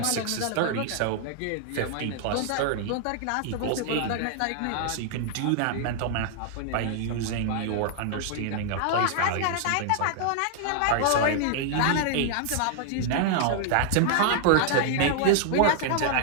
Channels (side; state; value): both; different; correlation -0.01